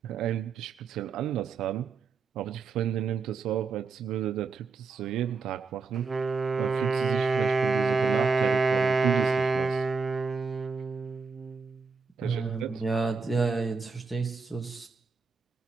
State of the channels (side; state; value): left; quieter; 4.7 dB